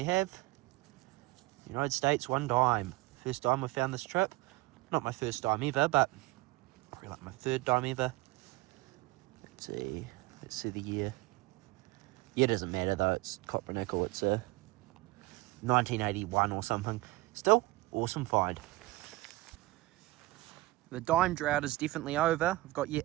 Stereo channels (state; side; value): quieter; left; 20.1 dB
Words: have United States, 1 dime. First dime we found this trip. Not my first dime ever, but probably like my 3rd dime ever. Let's see the year. Yeah, it doesn't matter though, it's copper nickel. It's a 1981 or something. Still, awesome find. The dime drought is definitely over. I've got yet